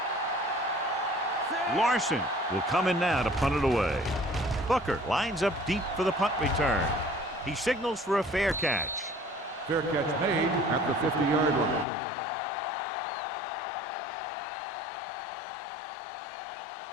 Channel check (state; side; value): drops out; right; at 11.9 s